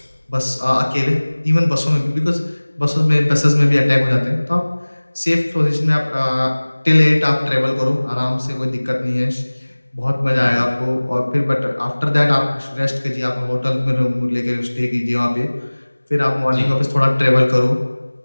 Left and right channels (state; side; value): inverted; both; correlation -1.00